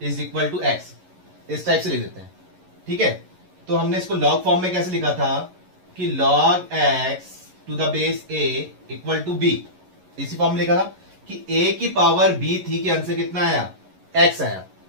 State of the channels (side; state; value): left; late; 11 ms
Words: is equal to x, इस टाइप से लिख देते हैं। ठीक है, तो हमने इसको लॉग फॉर्म में कैसे लिखा था कि log x to the base a equal to b, इसी फॉर्म में लिखा था कि a की पावर b थी कि अंश कितना आया, x आया।